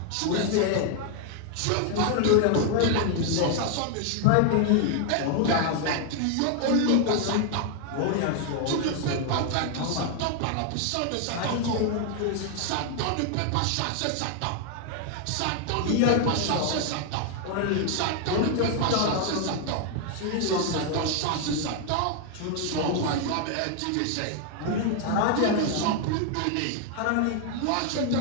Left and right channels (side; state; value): both; different; correlation 0.00